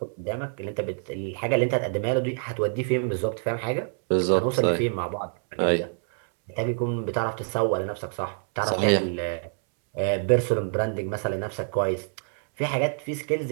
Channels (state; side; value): silent; left; 61 dB below the other